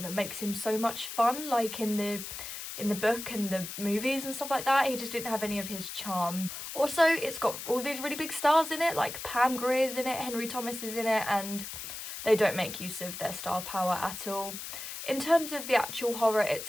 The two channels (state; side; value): noise; left; hiss, 8 dB below the sound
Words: that makes him so much fun, like in the book and the movies and stuff like that. He just didn't have any of his charm. Also, it's got all these really big stars in it, like Pam Grier's in it, Henry Thomas is in it, and they don't make use of their star power at all. In terms of the actual horror